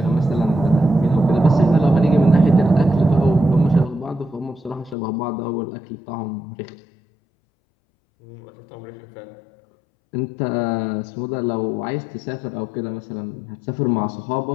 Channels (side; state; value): right; drops out; at 5.0 s